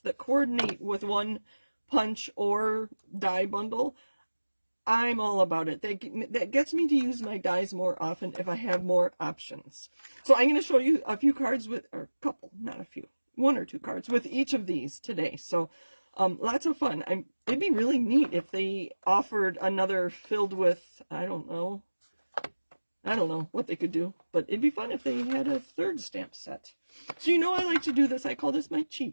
coordinate with one punch or die bundle, I'm all about it. That gets me to use my dies more often if I have more options. So I'm going to show you a few cards with, or a couple, not a few, one or two cards with each of these today. So lots of fun. It'd be really neat if they offered another filled with, I don't know what they could do, but it'd be fun if they had a third stamp set. So you know I like to do this. I call this my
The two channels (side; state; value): both; inverted; correlation -1.00